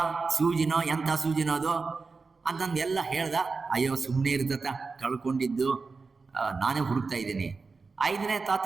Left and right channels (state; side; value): quieter; left; 4.4 dB